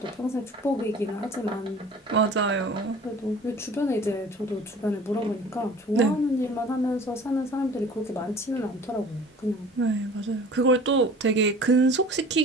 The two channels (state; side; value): normal; both; correlation 0.45